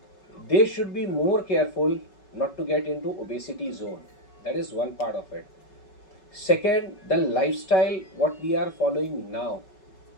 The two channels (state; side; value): late; right; 5.3 ms